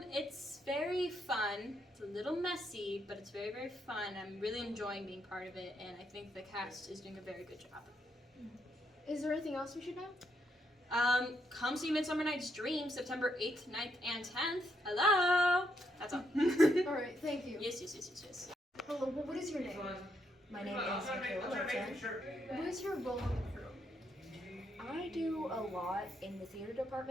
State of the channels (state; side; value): normal; both; correlation 0.77